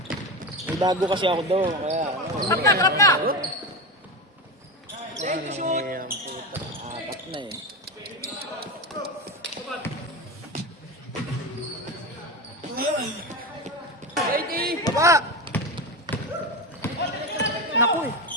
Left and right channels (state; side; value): normal; both; correlation 0.20